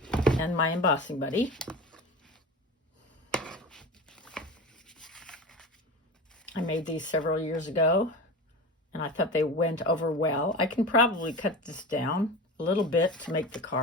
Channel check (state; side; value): normal; both; correlation 0.29